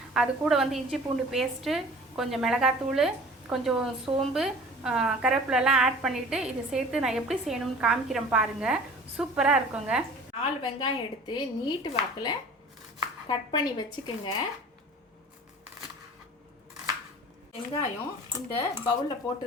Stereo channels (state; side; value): normal; both; correlation 0.44